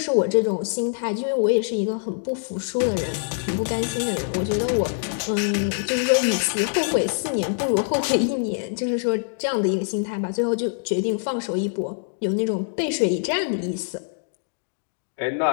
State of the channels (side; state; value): right; silent; digital silence